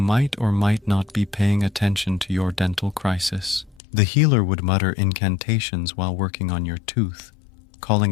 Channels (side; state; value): right; drops out; at 3.8 s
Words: or might not be paying attention to your dental crisis. The healer would mutter incantations while working on your tooth,